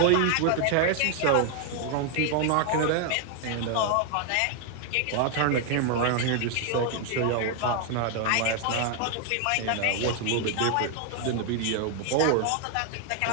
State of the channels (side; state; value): both; different; correlation 0.00